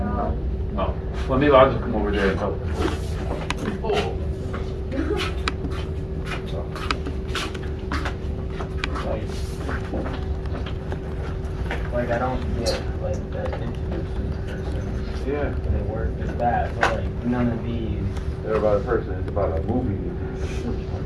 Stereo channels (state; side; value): identical; both; correlation 1.00